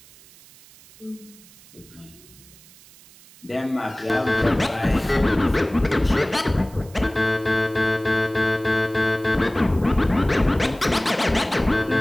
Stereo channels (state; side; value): noise; right; hiss, 24 dB below the sound